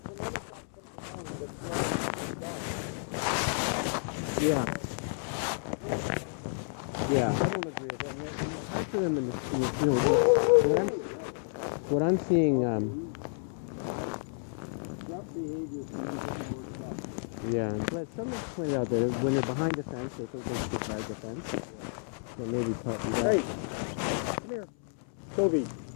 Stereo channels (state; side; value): silent; right; 57 dB below the other